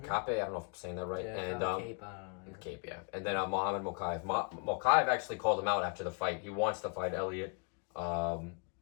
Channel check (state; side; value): quieter; right; 38.8 dB